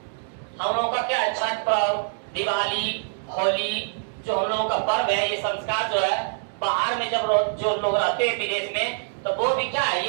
हम लोगों का क्या है? छठ पर्व, दिवाली, होली, जो हम लोगों का पर्व है, ये संस्कार जो है बाहर में जब जो लोग रहते हैं विदेश में, तो वो भी क्या है, ये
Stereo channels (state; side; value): silent; left; digital silence